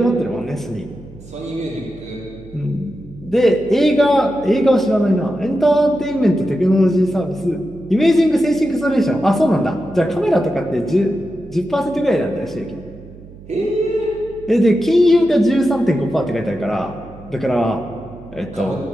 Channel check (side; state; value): right; noise; hum, 19 dB below the sound